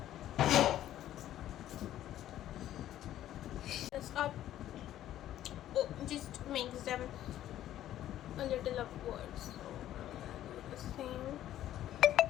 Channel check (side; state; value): right; quieter; 12.5 dB